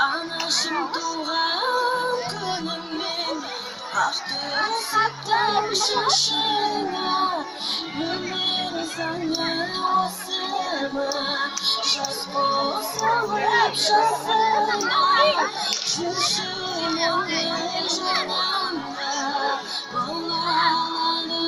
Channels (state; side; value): identical; both; correlation 1.00